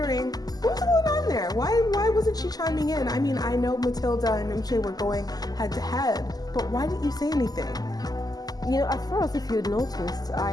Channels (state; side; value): late; right; 0.18 ms